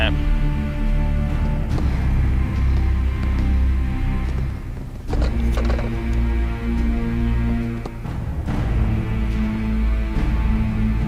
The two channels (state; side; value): identical; both; correlation 1.00